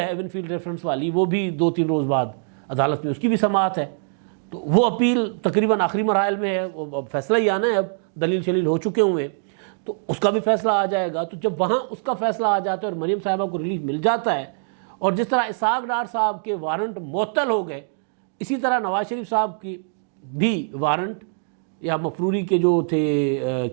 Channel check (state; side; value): silent; left; digital silence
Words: ایون فیلڈ ریفرنس والی، وہ بھی 2-3 روز بعد عدالت میں اس کی بھی سماعت ہے. تو وہ اپیل تقریباً آخری مراحل میں ہے، وہ فیصلہ ہی آنا ہے، اب دلیل شلیل ہو چکے ہوئے ہیں، تو اس کا بھی فیصلہ آ جائے گا. تو جب وہاں اس کا فیصلہ آ جاتا ہے اور مریم صاحبہ کو ریلیف مل جاتا ہے، اور جس طرح اسحاق ڈار صاحب کے وارنٹ معطل ہو گئے، اسی طرح نواز شریف صاحب کی بھی وارنٹ یا مفروری کے جو تھے